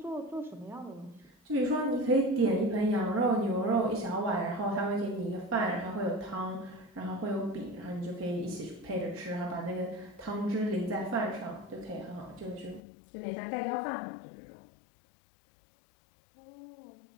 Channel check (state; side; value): drops out; right; at 12.8 s